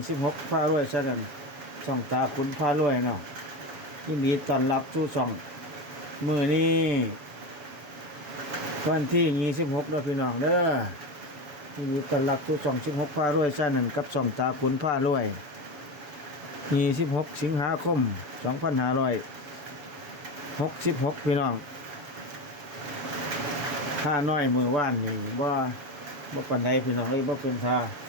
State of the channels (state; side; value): late; left; 7.2 ms